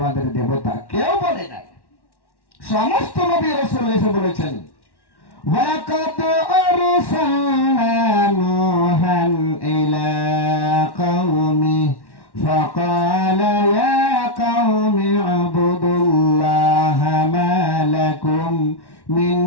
দেবতা। কেউ বলে নাই। সমস্ত নবী রাসূল এসে বলেছেন, ওয়ালাকাদ আরসালনা নূহান ইলা কওমি ফাকালা ইয়া কওমি আবুদুল্লাহা মা লাকুম মিন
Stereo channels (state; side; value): late; right; 1.1 ms